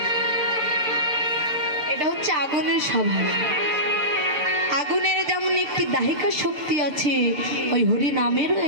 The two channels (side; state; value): left; late; 7.1 ms